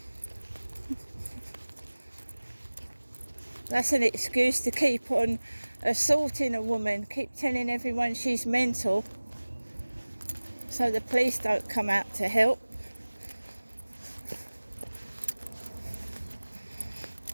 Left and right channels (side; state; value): both; inverted; correlation -1.00